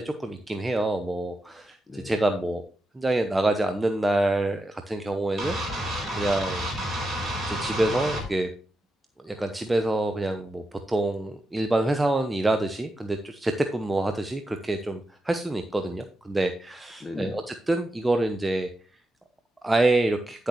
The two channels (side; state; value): both; normal; correlation 0.87